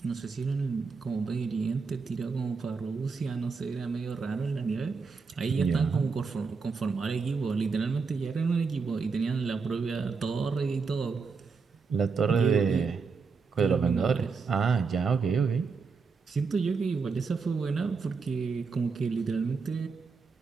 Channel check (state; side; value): quieter; left; 5.0 dB